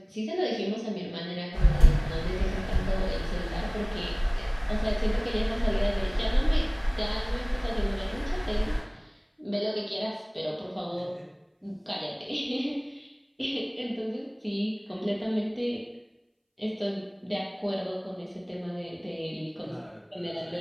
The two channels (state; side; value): identical; both; correlation 1.00